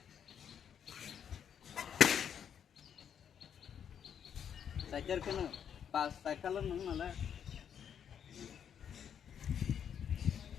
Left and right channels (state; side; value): quieter; right; 8.4 dB